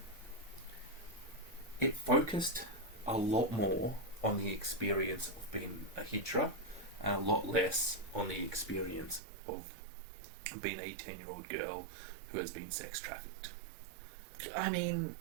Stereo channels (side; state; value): left; drops out; at 9.2 s